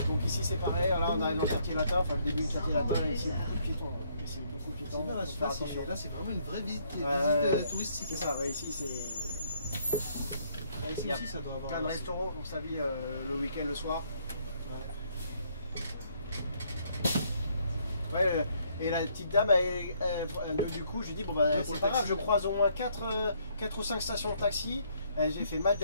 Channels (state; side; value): inverted; both; correlation -0.68